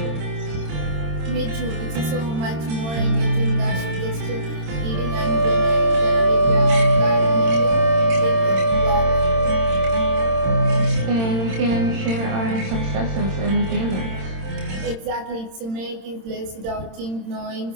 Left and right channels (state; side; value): late; left; 26 ms